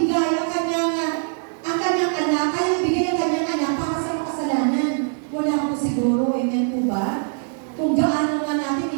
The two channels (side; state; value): left; silent; 58 dB below the other